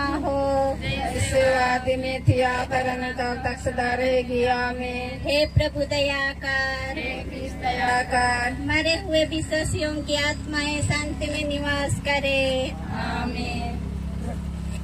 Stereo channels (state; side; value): identical; both; correlation 1.00